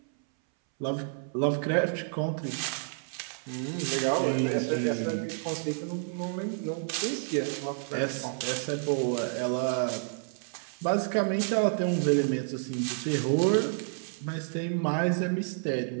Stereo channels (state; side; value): silent; left; 58 dB below the other